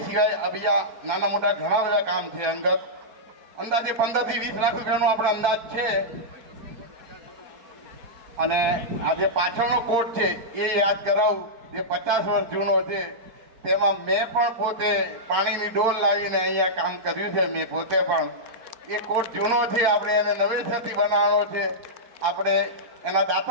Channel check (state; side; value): late; left; 4.6 ms